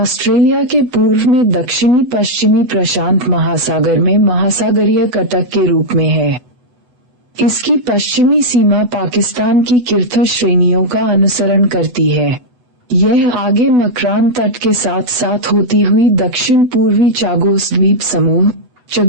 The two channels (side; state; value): left; late; 8.1 ms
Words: के पूर्व में दक्षिणी पश्चिमी प्रशांत महासागर में महासागरीय कटक के रूप में है। इसकी पश्चिमी सीमा पाकिस्तान की किर्थर श्रेणियों का अनुसरण करती है। यह आगे मकरान तट के साथ साथ होती हुई दक्षिण पूर्वी चागोस द्वीप समूह